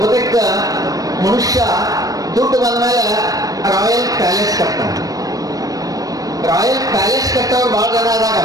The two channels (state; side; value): late; left; 0.18 ms